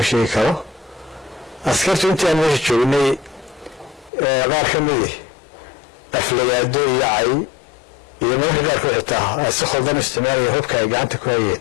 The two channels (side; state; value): right; drops out; at 4.1 s